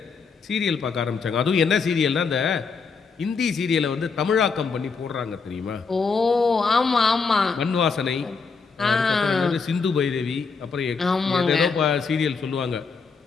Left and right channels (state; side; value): quieter; right; 5.0 dB